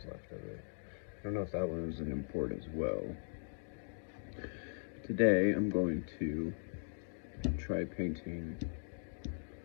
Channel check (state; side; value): silent; right; digital silence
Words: left of it. I don't know if that one was an import as well. Today I'm going to try painting